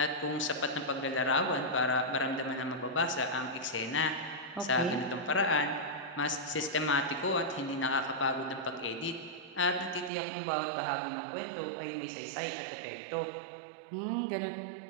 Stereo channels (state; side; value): drops out; left; at 10.1 s